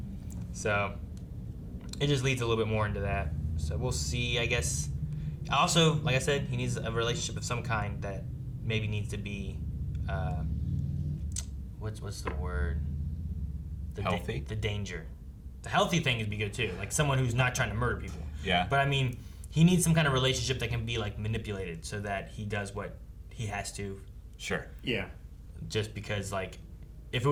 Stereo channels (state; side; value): identical; both; correlation 1.00